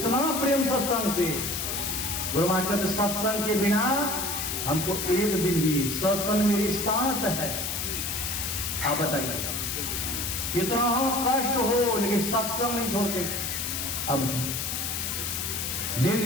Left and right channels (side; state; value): left; noise; hiss, 2 dB below the sound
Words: प्रेम सत्संग से। गुरु महाराज कहते सत्संग के बिना हमको एक दिन भी, सत्संग मेरी सांस है। आप बताइए कितना हो कष्ट हो, लेकिन सत्संग नहीं छोड़ते। अब दिन